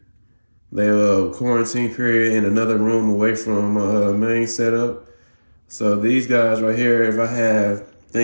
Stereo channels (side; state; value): both; inverted; correlation -1.00